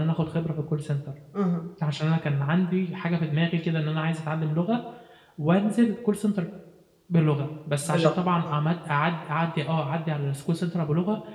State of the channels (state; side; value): identical; both; correlation 1.00